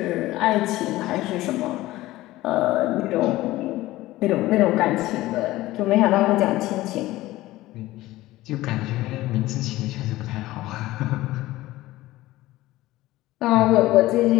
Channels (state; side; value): quieter; right; 17.3 dB